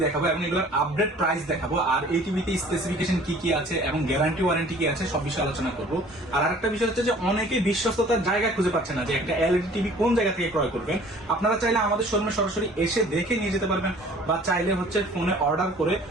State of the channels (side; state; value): both; normal; correlation 0.51